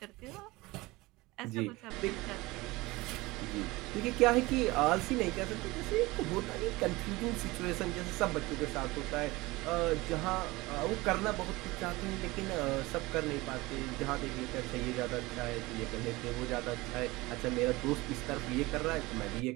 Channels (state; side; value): quieter; left; 21.4 dB